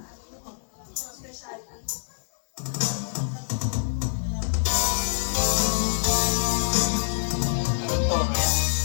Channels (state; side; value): silent; right; digital silence